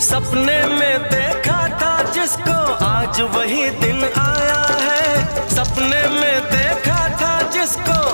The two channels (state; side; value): inverted; both; correlation -1.00